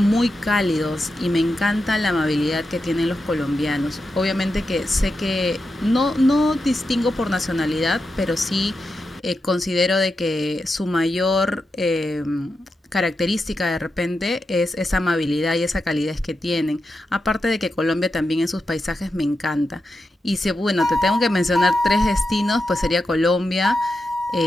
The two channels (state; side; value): normal; both; correlation 0.88